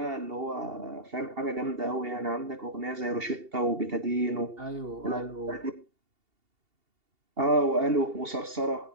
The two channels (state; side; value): late; left; 2.8 ms